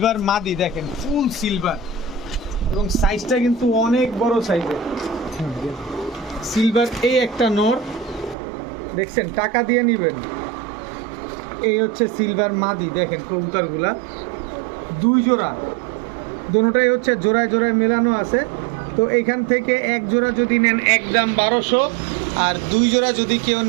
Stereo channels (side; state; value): left; drops out; at 8.3 s